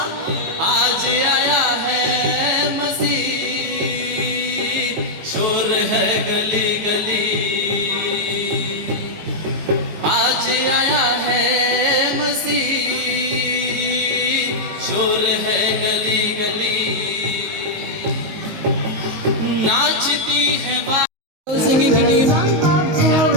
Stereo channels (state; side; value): late; left; 19 ms